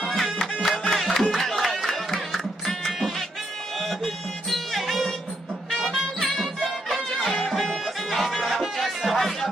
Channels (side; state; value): both; normal; correlation 0.77